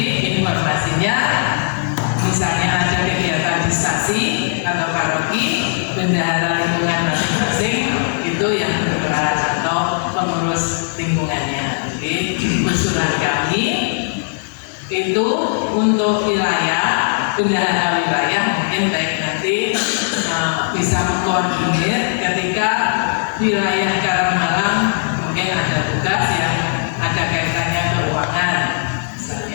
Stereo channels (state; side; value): silent; right; digital silence